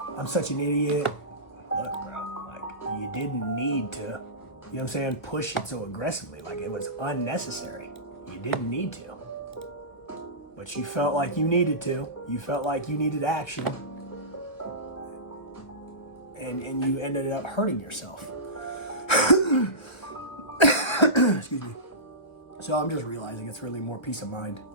I'm such an idiot. Look, bro, like, you didn't need to, you know what I'm saying, push it so aggressively. Like, it was unnecessary. You didn't need to. But you felt like you needed to. You felt like you needed action. And you ended up hurting yourself. Excuse me. So I'm just realizing it's really more peace of mind.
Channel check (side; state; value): right; late; 1.6 ms